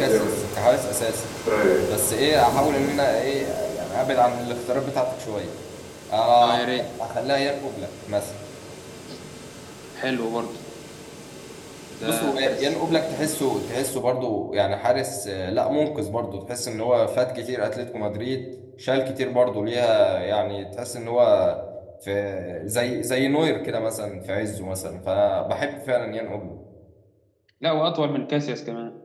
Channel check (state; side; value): identical; both; correlation 1.00